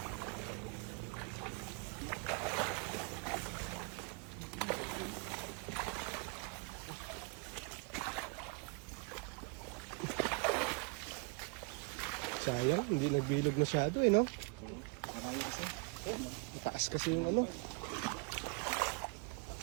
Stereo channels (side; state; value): left; quieter; 32.4 dB